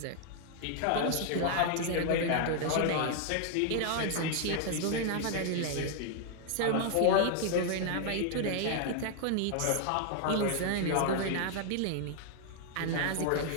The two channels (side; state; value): both; different; correlation 0.00